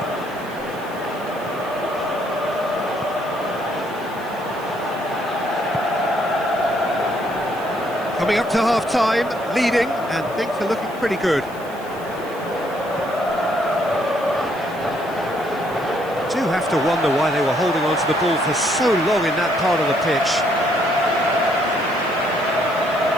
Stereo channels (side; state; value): right; noise; hiss, 22 dB below the sound